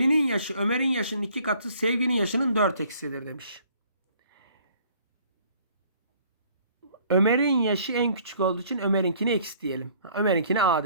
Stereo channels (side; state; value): both; inverted; correlation -0.58